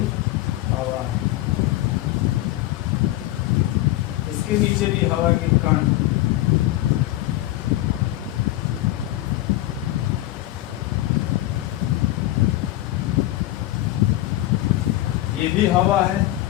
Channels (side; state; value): right; quieter; 16.0 dB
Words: हवा है। इसके नीचे भी हवा के कण, ये भी हवा है